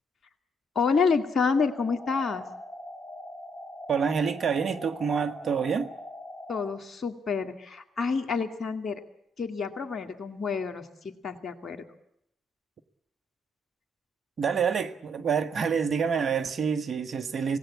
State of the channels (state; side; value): normal; both; correlation 0.70